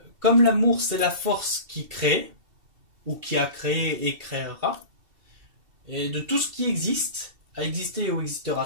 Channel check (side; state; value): left; late; 2.7 ms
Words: comme l'amour c'est la force qui crée, ou qui a créé et créera, et de tout ce qui existe, a existé ou